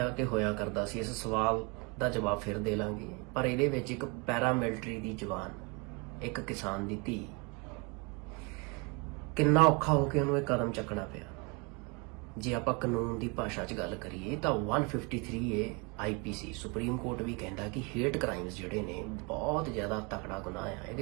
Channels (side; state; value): left; quieter; 30.8 dB